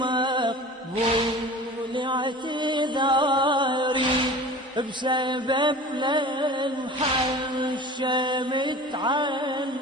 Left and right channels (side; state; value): both; normal; correlation 0.39